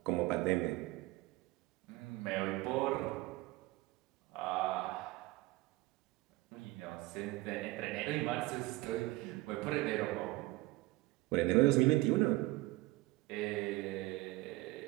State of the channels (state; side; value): quieter; left; 20.1 dB